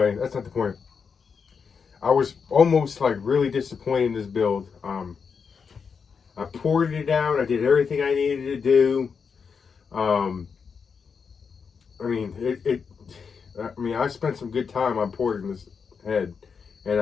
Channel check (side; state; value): right; quieter; 5.9 dB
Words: that's not the point. I was almost like really disappointed in this build. I poured it out. I did everything I needed to do. I mean, I spent some good time on porting this head, and